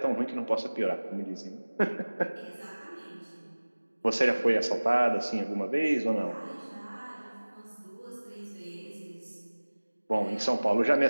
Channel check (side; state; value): both; inverted; correlation -1.00